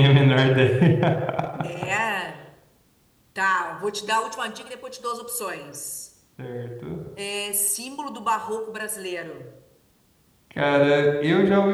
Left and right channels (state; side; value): identical; both; correlation 1.00